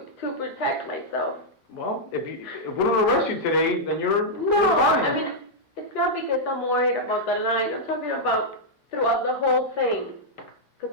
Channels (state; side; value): normal; both; correlation -0.06